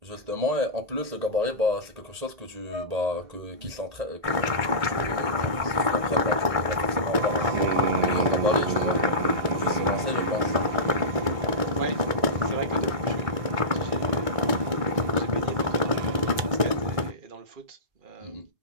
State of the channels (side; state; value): left; late; 1.6 ms